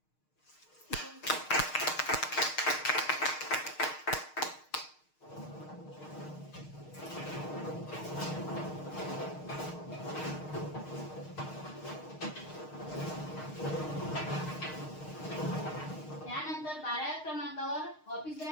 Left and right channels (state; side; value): late; right; 6.5 ms